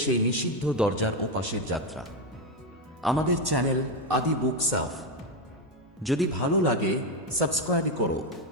সেই নিষিদ্ধ দরজার ওপাশের যাত্রা। আমাদের চ্যানেল আদি বুক সাফ যদি ভালো লাগে সাবস্ক্রাইব করো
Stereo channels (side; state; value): both; normal; correlation 0.09